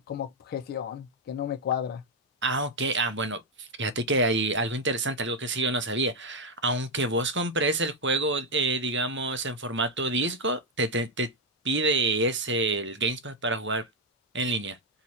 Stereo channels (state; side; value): normal; both; correlation 0.02